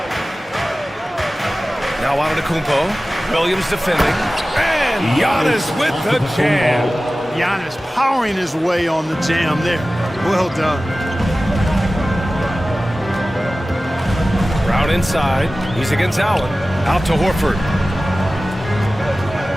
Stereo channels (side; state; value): both; normal; correlation 0.96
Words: Now Antetokounmpo. Williams defending. And Giannis with the jam. Giannis powering his way on the jam there. Well done. Brown inside. He's against Allen. Out to Horford.